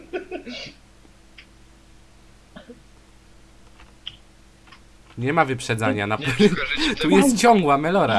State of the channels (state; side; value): identical; both; correlation 1.00